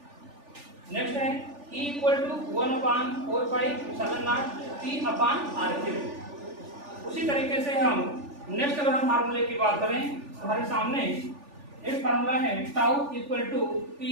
Next है E equal to 1/4 pi epsilon naught P upon RQ। उसी तरीके से हम next अगर हम फार्मूले की बात करें तो हमारे सामने एक फार्मूला है tau equal to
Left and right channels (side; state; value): left; late; 3.4 ms